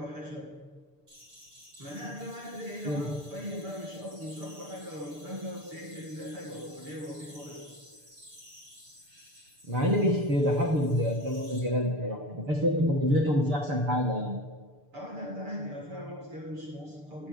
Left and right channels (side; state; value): left; late; 6.8 ms